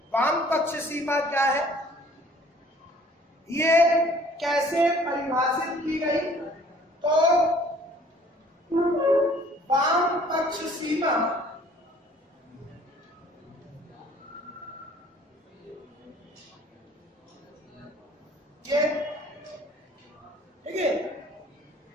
वाम पक्ष सीमा क्या है, ये कैसे परिभाषित की गई? तो वाम पक्ष सीमा ये ठीक है।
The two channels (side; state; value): both; normal; correlation 0.55